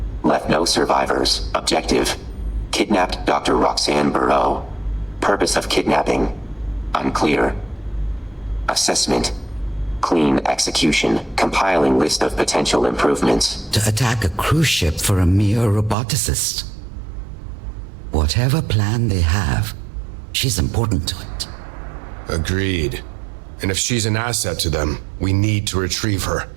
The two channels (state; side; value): drops out; left; at 16.0 s